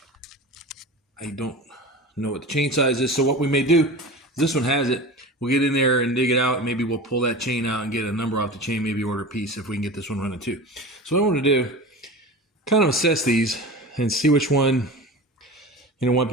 I don't know what the chain size is. So what we may do, this one has it. We'll get in there and dig it out, and maybe we'll pull that chain out and get a number off the chain, maybe order a piece if we can get this one running too. So what I want to do, kind of assess these and see which one might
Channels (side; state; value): both; normal; correlation 0.32